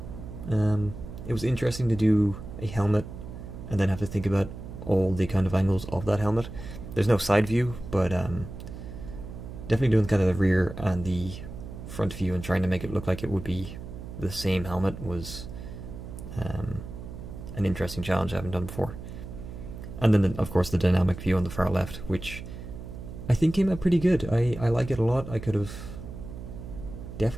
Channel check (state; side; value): noise; right; hum, 11 dB below the sound